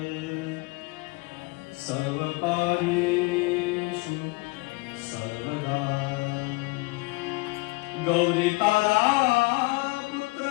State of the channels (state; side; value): quieter; right; 24.9 dB